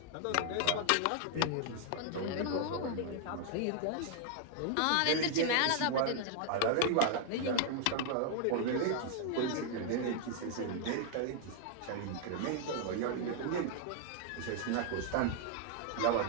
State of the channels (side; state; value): both; different; correlation 0.00